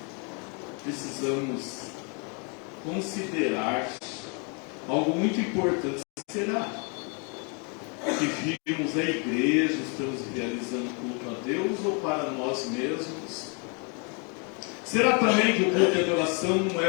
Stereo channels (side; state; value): right; quieter; 35.8 dB